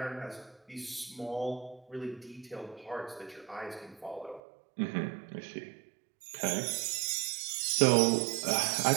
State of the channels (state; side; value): drops out; left; at 4.4 s